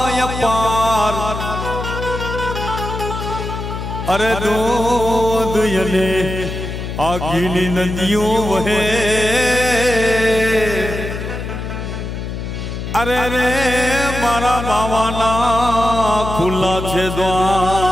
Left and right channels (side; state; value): left; noise; hum, 6 dB below the sound